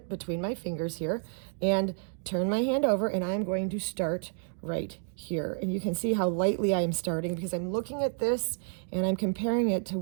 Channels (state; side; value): silent; left; 58 dB below the other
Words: between my fingers here, and turn my hand over, and I'm going to start right here. And you can see how lightly I am starting because I'm looking at this and I'm comparing it to